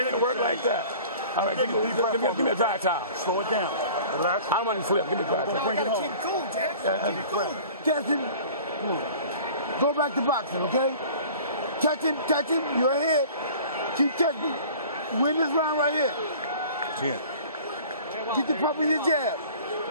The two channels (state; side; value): inverted; both; correlation -0.45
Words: to work like that. All right, give me a dry towel. Slow it down. Relax. I don't want to flip. Give me a dry towel. Bring it home. Jackson, go back to boxing, okay? Touch him, you're ahead. Keep touching. Win this round right here. 10. Get the pump in your jab.